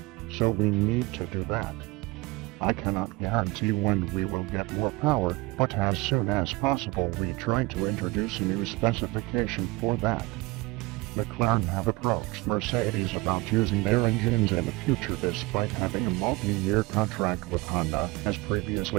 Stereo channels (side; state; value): left; quieter; 22.7 dB